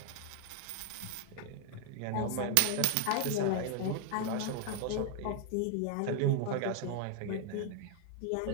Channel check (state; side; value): different; both; correlation 0.01